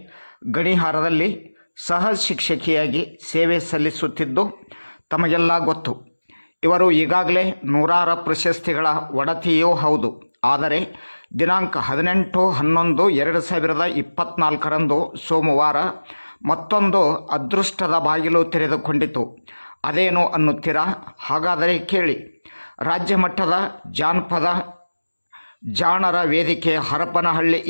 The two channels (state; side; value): inverted; both; correlation -1.00